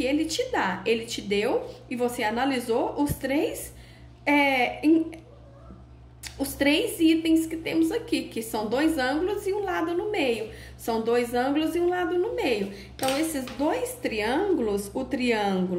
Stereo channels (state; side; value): identical; both; correlation 1.00